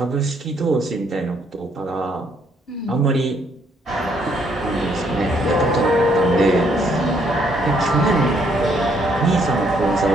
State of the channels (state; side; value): normal; both; correlation 0.69